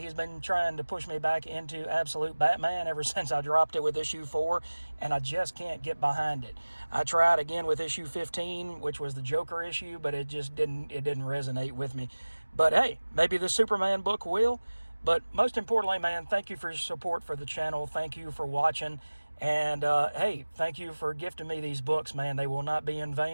he's been trying to push me back into absolute Batman ever since I dropped it with issue 4, and I just can't get behind it. I tried again with issue 15, which was the Joker issue, but it didn't resonate with me. But hey, maybe the Superman book will. But most importantly, man, thank you for your support for the channel. Thank you for watching. And, hey, thank you for gifting me these books, man. They will not be in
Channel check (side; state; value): both; inverted; correlation -1.00